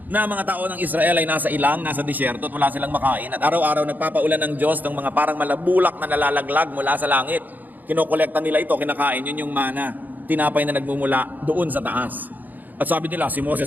Na mga tao ng Israel ay nasa ilang, nasa disyerto at wala silang makain. At araw-araw nagpapaulan ng Diyos ng mga parang malabulak na nalalaglag mula sa langit. Kinokolekta nila ito, kinakain, yun yung manna. Tinapay na nagmumula doon sa taas. At sabi nila, si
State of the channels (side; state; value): left; late; 0.084 ms